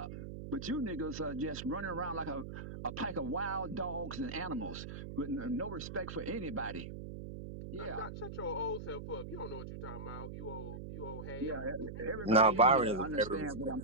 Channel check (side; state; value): right; noise; hum, 8 dB below the sound